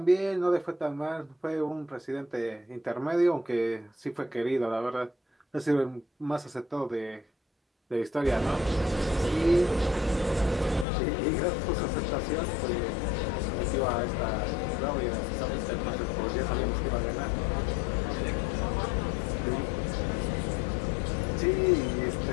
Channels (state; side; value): drops out; right; at 10.9 s